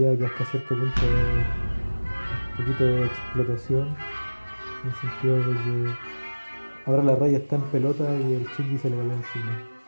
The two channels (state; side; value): inverted; both; correlation -1.00